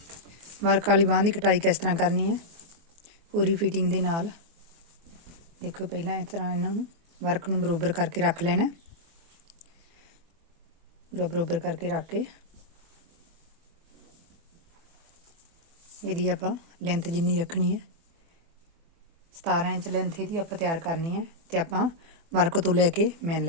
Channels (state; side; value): late; left; 24 ms